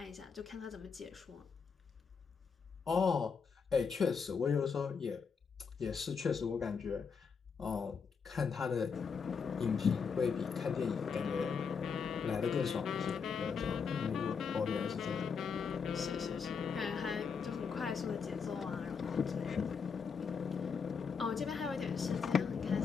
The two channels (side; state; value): right; quieter; 5.9 dB